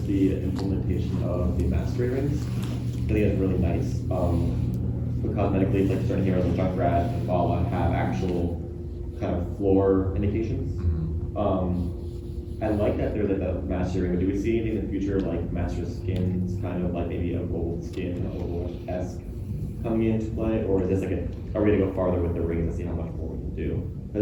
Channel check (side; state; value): both; identical; correlation 1.00